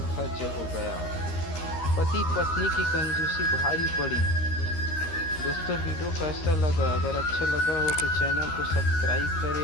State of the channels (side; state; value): right; late; 13 ms